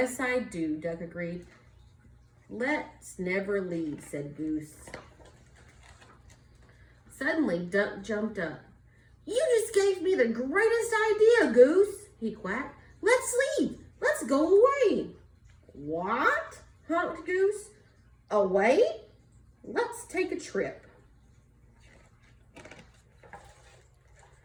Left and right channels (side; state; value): both; identical; correlation 1.00